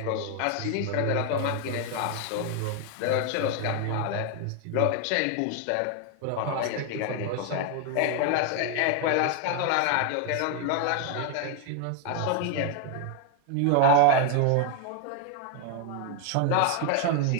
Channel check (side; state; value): both; different; correlation 0.01